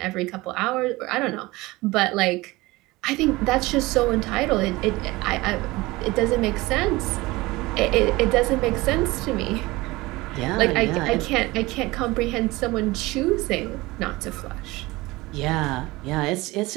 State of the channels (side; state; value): left; quieter; 20.9 dB